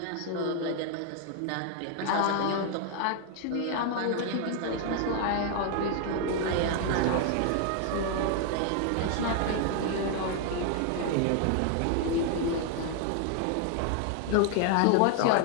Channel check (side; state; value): both; different; correlation 0.00